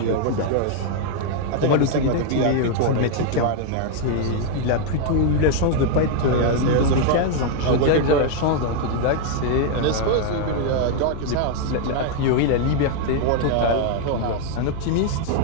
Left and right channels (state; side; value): different; both; correlation 0.00